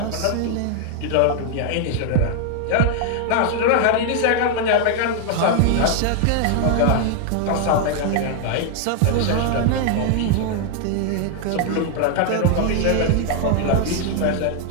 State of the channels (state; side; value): different; both; correlation 0.00